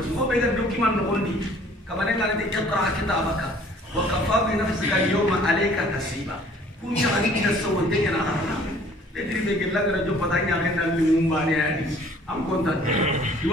ho bega do kiman no kondi. Kaman ngale ti iqra kitabaka wa kafa bi nafsika al-yawma alayka hasiba. Punya adik kita semua dengan anak-anak. Jadi begini lagi raja patahnya akan dalam mumbai ni. Am kontak.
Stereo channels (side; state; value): both; normal; correlation 0.55